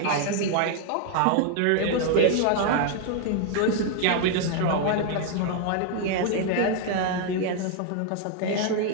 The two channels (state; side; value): different; both; correlation 0.00